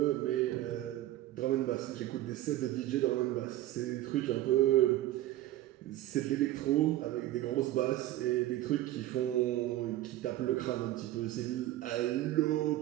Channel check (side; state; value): left; quieter; 14.8 dB